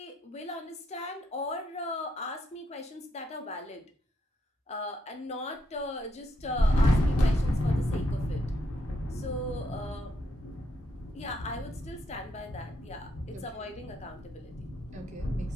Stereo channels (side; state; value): both; normal; correlation 0.76